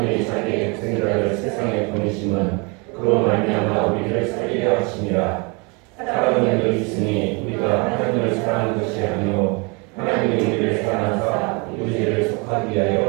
자기의 독생자를 세상에 보내심은 그로 말미암아 우리를 살리려 하심이라. 사랑은 여기 있으니 우리가 하나님을 사랑하는 것이 아니요 하나님이 우리를 사랑하사 우리 죄를 속하기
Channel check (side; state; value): left; quieter; 30.7 dB